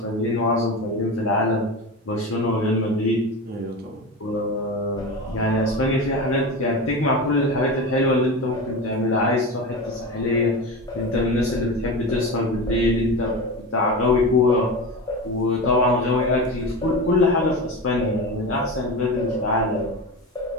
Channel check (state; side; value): normal; both; correlation 0.25